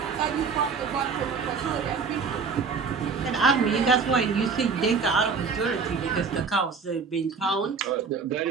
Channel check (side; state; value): left; quieter; 5.2 dB